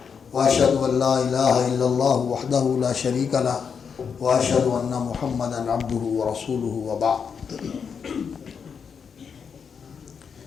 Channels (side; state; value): right; quieter; 6.5 dB